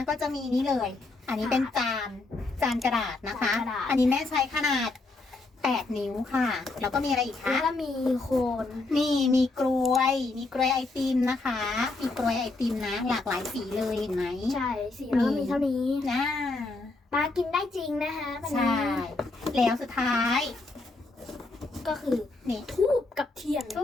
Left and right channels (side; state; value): right; quieter; 3.3 dB